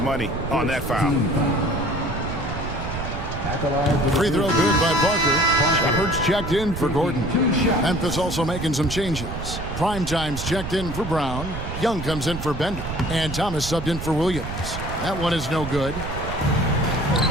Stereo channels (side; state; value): right; noise; rumble, 7 dB below the sound